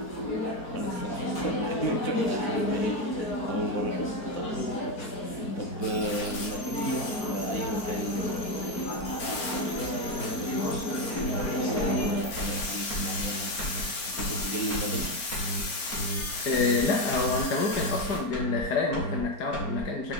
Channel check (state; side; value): late; right; 4.4 ms